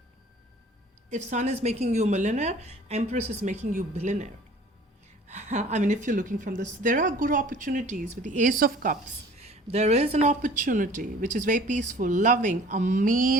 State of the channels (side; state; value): both; normal; correlation 0.49